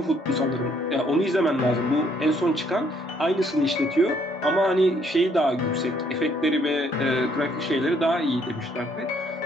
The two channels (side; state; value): both; normal; correlation 0.67